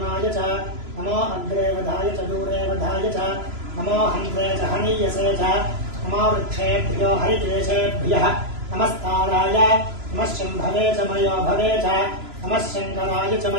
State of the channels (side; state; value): left; late; 3.0 ms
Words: च नमो अग्रे वधाय च दूरे वधाय च नमो हन्त्रे च हनीयसे च नमो वृक्षेभ्यो हरिकेशेभ्यः नमस्ताराय नमः शम्भवे च मयो भवे च नमः शङ्कराय च